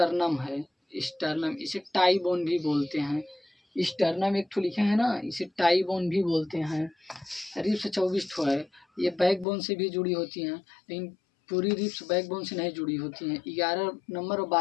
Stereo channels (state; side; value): drops out; right; at 9.5 s